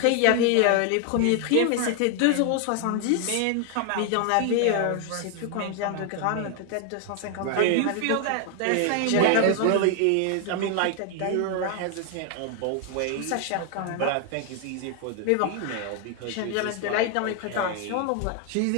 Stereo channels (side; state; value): both; different; correlation 0.00